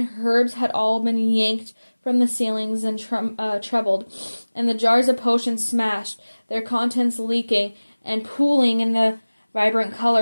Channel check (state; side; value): inverted; both; correlation -1.00